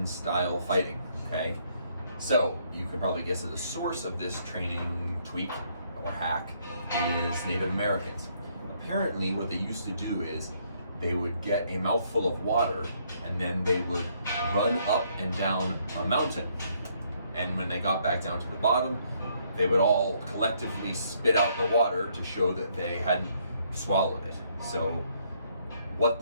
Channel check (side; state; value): both; inverted; correlation -0.69